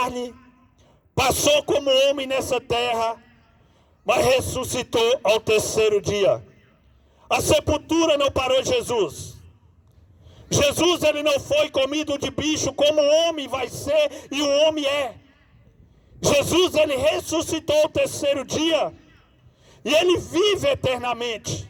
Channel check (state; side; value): identical; both; correlation 1.00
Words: passou como homem nessa terra, mas ressuscitou ao terceiro dia. A sepultura não parou Jesus. Jesus, ele não foi comido de bicho como o homem vai ser e o homem é. Jesus, ele ressuscitou ao terceiro dia e ele vive eternamente.